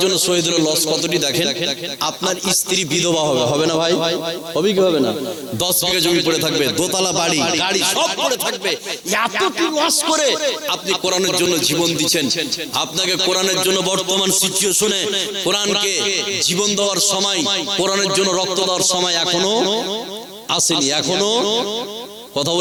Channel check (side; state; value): both; identical; correlation 1.00